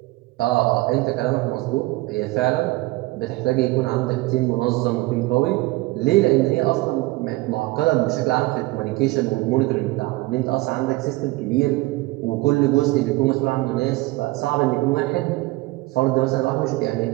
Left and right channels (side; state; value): left; quieter; 20.5 dB